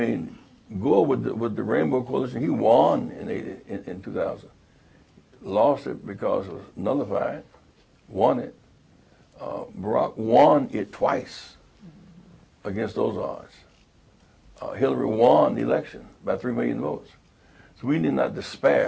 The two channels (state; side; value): identical; both; correlation 1.00